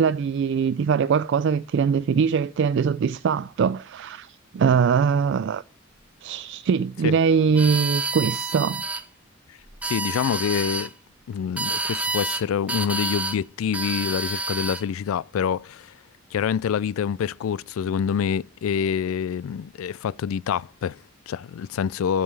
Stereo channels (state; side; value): normal; both; correlation 0.15